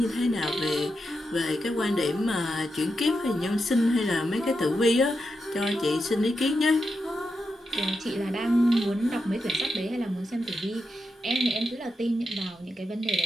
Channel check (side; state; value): both; normal; correlation 0.87